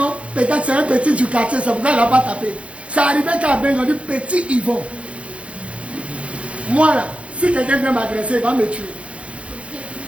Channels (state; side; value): late; left; 0.062 ms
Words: peut-être c'est un petit du quartier, c'est pourquoi il n'a pas tapé. C'est arrivé qu'à Bengue, on dit petit Yvon. Moi là, si quelqu'un vient m'agresser, il va me tuer.